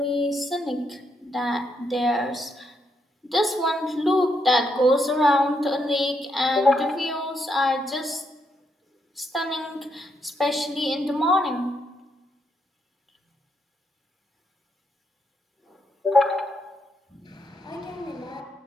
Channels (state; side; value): normal; both; correlation 0.78